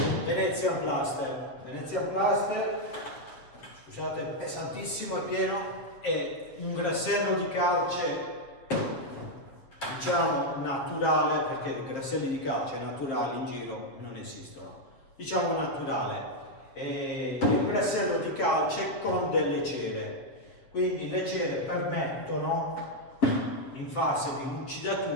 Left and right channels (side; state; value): right; late; 7.7 ms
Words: Venetian Plaster. Venetian Plaster, scusate, è pesantissimo, è pieno, è un grassello di calce, diciamo naturale, perché i grasselli di calce naturali in giro non esistono, diciamo naturale. È un grassello di calce con delle cere, quindi le cere permettono in fase di